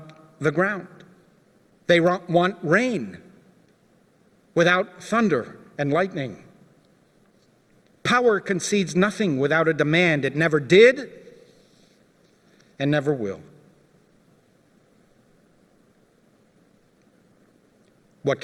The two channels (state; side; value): identical; both; correlation 1.00